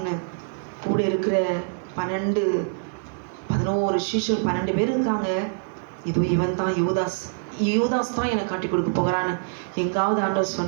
கூட இருக்கிற 11 சீஷர் 12 பேர் இருக்காங்க, இதோ இவன் தான் யூதாஸ் தான் எனக்கு காட்டி கொடுக்க போகிறான்னு எங்காவது ஆண்டவர்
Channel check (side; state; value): left; silent; 62 dB below the other